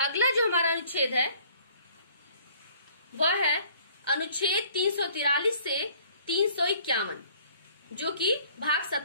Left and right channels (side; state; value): both; inverted; correlation -0.56